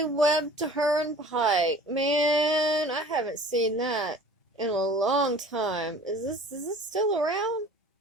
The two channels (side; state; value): both; normal; correlation 0.46